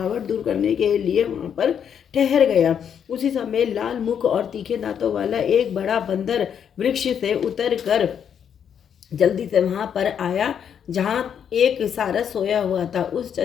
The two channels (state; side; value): quieter; right; 8.2 dB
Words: दूर करने के लिए वहां पर ठहर गया। उसी समय लाल मुख और तीखे दांतों वाला एक बड़ा बंदर वृक्ष से उतर कर जल्दी से वहां पर आया जहां एक सारस सोया हुआ था। उस